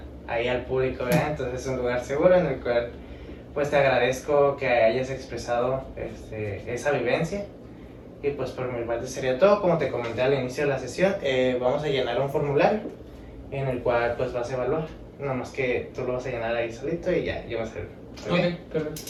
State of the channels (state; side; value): identical; both; correlation 1.00